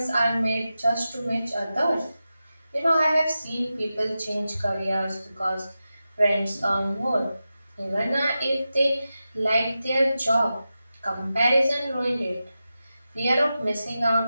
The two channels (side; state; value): both; inverted; correlation -0.92